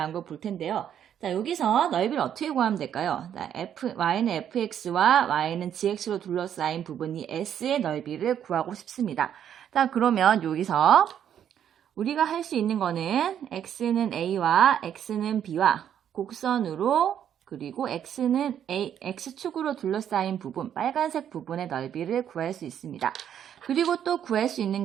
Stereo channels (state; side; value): quieter; left; 9.5 dB